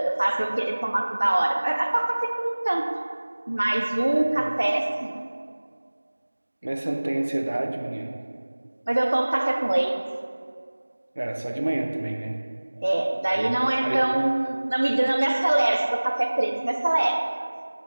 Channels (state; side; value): inverted; both; correlation -1.00